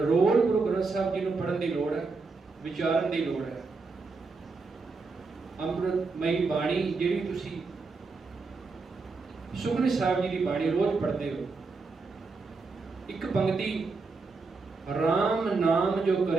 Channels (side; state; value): left; quieter; 4.2 dB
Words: ਗੁਰੂ ਗ੍ਰੰਥ ਸਾਹਿਬ ਜੀ ਨੂੰ ਪੜ੍ਹਨ ਦੀ ਲੋੜ ਹੈ, ਵਿਚਾਰਨ ਦੀ ਲੋੜ ਹੈ। ਅੰਮ੍ਰਿਤਮਈ ਬਾਣੀ ਜਿਹੜੀ ਤੁਸੀਂ ਸੁਖਮਨੀ ਸਾਹਿਬ ਜੀ ਦੀ ਬਾਣੀ ਰੋਜ਼ ਪੜ੍ਹਦੇ ਹੋ, ਇੱਕ ਪੰਕਤੀ, ਰਾਮ ਨਾਮ ਜੋ